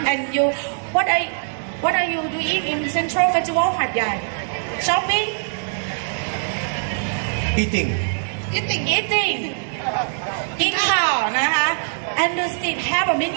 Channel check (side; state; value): left; silent; digital silence